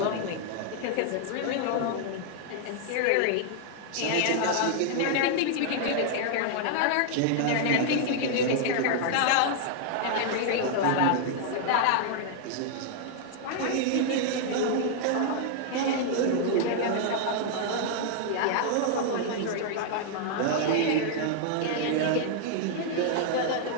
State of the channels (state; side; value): different; both; correlation -0.01